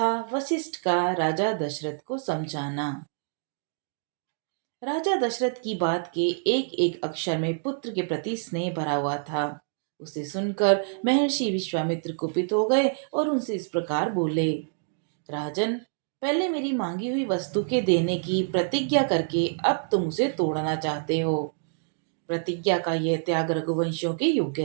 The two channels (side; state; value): left; silent; digital silence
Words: वशिष्ठ का राजा दशरथ को समझाना। राजा दशरथ की बात के एक एक अक्षर में पुत्र के प्रति स्नेह भरा हुआ था। उसे सुनकर महर्षि विश्वामित्र कुपित हो गए और उनसे इस प्रकार बोले। राजन, पहले मेरी मांगी हुई वस्तु के देने की प्रतिज्ञा करके अब तुम उसे तोड़ना चाहते हो। प्रतिज्ञा का यह त्याग रघुवंशियों के